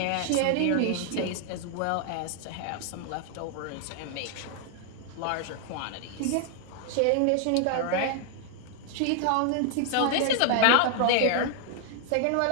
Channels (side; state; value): both; different; correlation 0.00